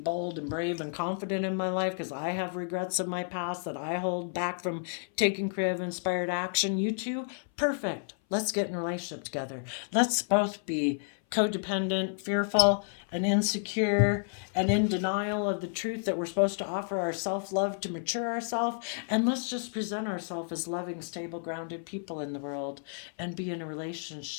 and brave and confident in my life because I have regrets of my past that I hold back from taking creative inspired action. You too? Perfect. Let's get in a relationship together. Let's both be codependent, fearful, and insecure, and in denial of the truth that we're supposed to offer our self-love to mature ourselves. And let's just present ourselves as loving, stable, grounded people in the world and be in a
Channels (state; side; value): silent; right; 56 dB below the other